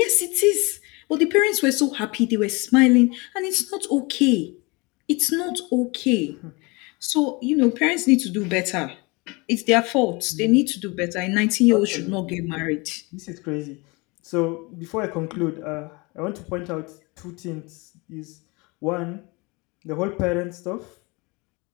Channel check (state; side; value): quieter; right; 26.9 dB